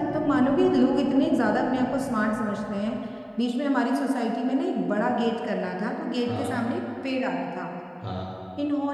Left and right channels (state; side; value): identical; both; correlation 1.00